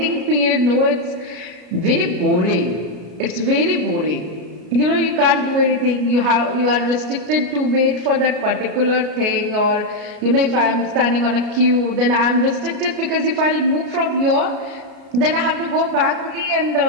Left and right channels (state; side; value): late; left; 33 ms